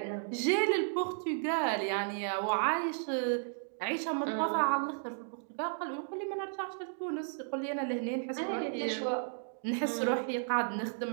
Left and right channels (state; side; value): silent; left; digital silence